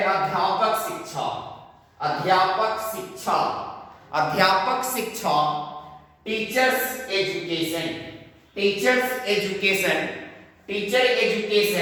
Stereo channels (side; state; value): both; identical; correlation 1.00